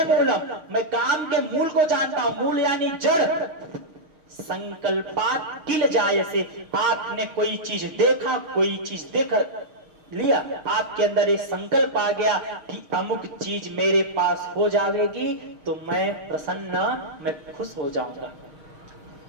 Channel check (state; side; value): late; left; 6.4 ms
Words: मूलम, मैं काम के मूल को जानता हूं, मूल यानी जड़। संकल्पात् किल जायसे, आपने कोई चीज देखा, कोई चीज देख लिया, आपके अंदर ये संकल्प आ गया कि अमुक चीज मेरे पास हो जाएगी तो मैं प्रसन्न, मैं खुश हो जाऊंगा।